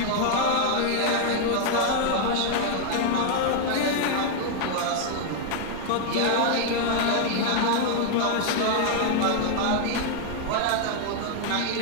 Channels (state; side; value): different; both; correlation 0.00